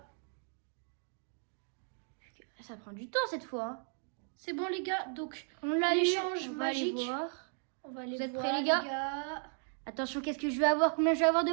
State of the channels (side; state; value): left; silent; 54 dB below the other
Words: Ça prend du temps cette fois. C'est bon les gars, donc On l'a eu, l'échange on va aller magique. voir. On va aller Vous êtes voir prêts, les les gars. Attention, qu'est-ce que je vais avoir? Combien je vais avoir de